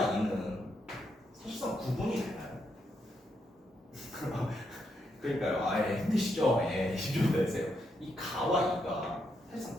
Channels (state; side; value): normal; both; correlation 0.80